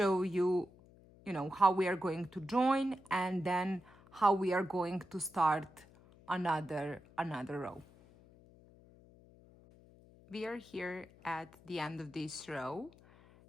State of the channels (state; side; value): noise; left; hum, 25 dB below the sound